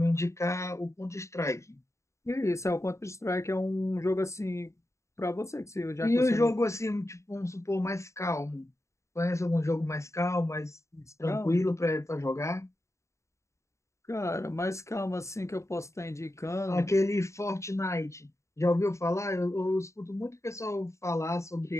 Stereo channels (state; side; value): late; right; 0.14 ms